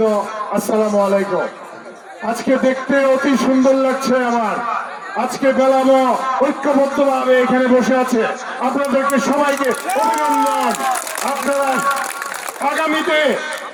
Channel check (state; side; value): identical; both; correlation 1.00